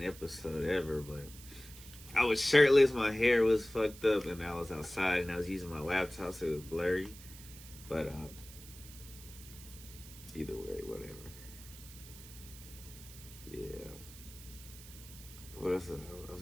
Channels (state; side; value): noise; right; hiss, 17 dB below the sound